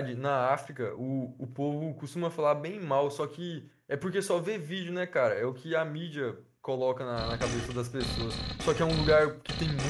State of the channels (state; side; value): identical; both; correlation 1.00